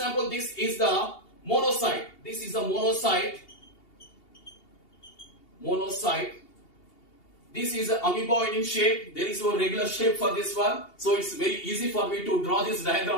this is the monocyte. monocyte. This is an amoeboid in shape. There is no regular shape for this one. So it's very easy for me to draw this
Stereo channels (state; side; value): late; right; 2.8 ms